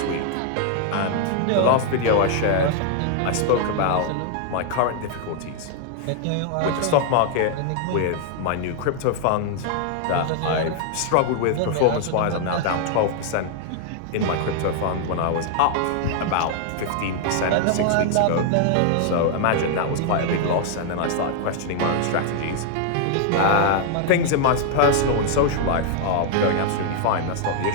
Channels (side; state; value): both; different; correlation 0.00